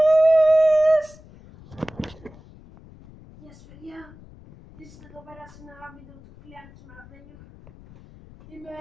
Γεια σας παιδιά, είστε εδώ πέρα σε ένα βίντεο του Κλειάνης Μαρδένιου. Είμαι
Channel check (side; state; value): left; noise; rumble, 22 dB below the sound